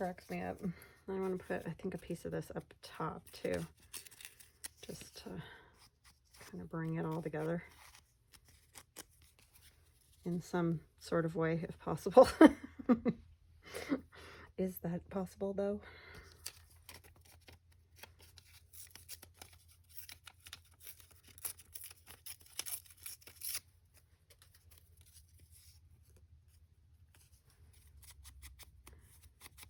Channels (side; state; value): both; identical; correlation 1.00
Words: me up. I want to put, I think, a piece of this up top too, just to kind of bring it all together in some sort of way, if possible. Is that possible though?